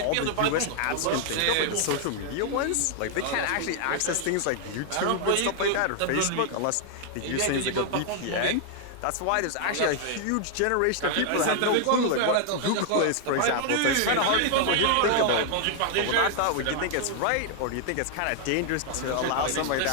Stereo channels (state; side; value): different; both; correlation 0.00